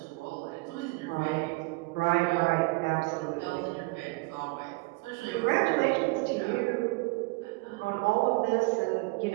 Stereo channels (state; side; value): quieter; left; 26.6 dB